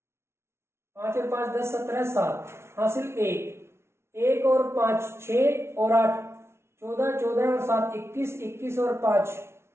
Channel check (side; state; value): left; late; 0.13 ms